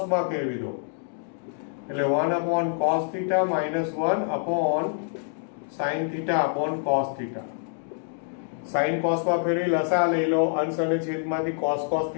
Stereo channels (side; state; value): right; silent; 60 dB below the other